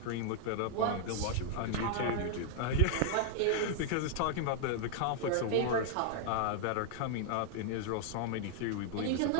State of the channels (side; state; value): both; different; correlation 0.00